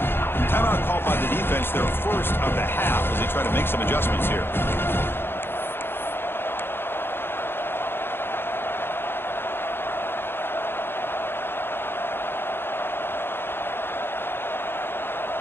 Timeout called by the defense, their first of the half, as they try to make some adjustments here.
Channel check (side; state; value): right; late; 0.11 ms